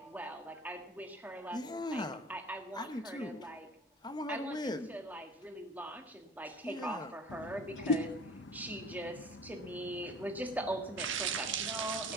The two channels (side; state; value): both; normal; correlation 0.44